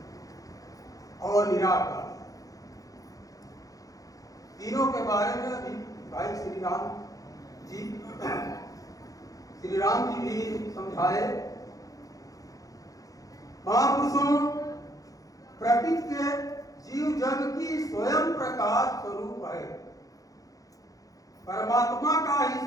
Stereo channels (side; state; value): right; late; 0.17 ms